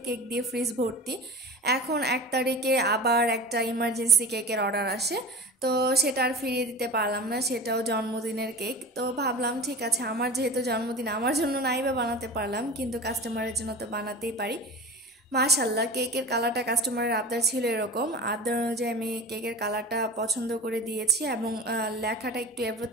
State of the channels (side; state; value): both; normal; correlation 0.34